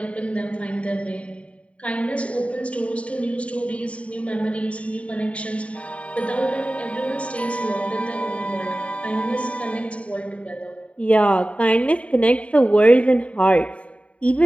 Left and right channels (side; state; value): right; late; 0.064 ms